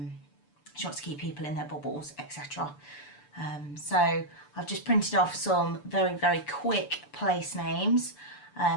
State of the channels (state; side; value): late; right; 6.9 ms